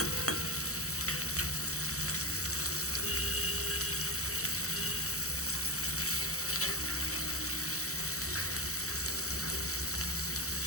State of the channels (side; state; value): right; late; 0.65 ms